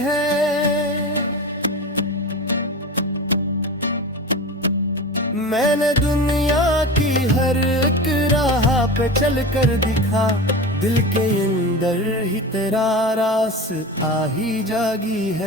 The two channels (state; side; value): normal; both; correlation 0.29